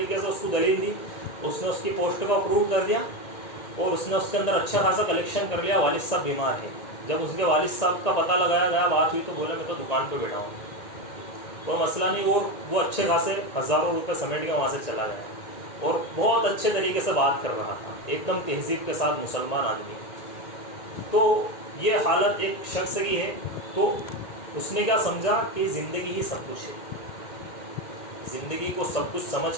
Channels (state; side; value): late; right; 1.8 ms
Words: سے اس کو دلیل دی، اس نے اس کی پوسٹ کو اپروو کر دیا، اور اس نے اس کے اندر اچھا خاصا کلیکشن کر لیا۔ والد صاحب بیمار ہے، جب اس کے والد صاحب کا پتہ لگایا گیا، بات ہوئی، تو بولے میں تو دکان پہ بیٹھا ہوں، کوئی مسئلہ نہیں، اور وہ اچھے خاصے ہزاروں روپے سمیٹ کے وہاں سے چلا گیا، اور بہت اچھے طریقے سے بات کر رہا تھا، ایک دم تہذیب کے ساتھ مسلمان آدمی۔ تو یہ حالت ایک شخص کی ہے، تو اس نے کیا سمجھا کہ زندگی ہی سب کچھ ہے، زندگی کو سب کچھ سمجھ